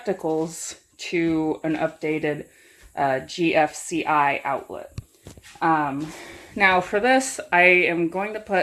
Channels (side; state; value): both; identical; correlation 1.00